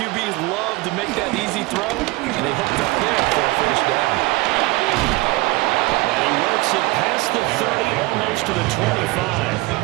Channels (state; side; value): quieter; left; 22.4 dB